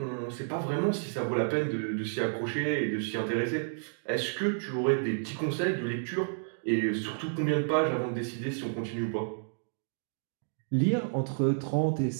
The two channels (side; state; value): left; silent; digital silence